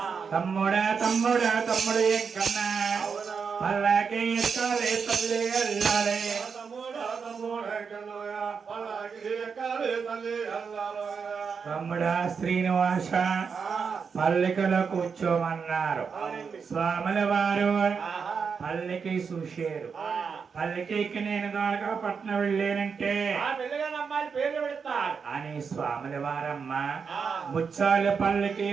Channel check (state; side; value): quieter; left; 5.9 dB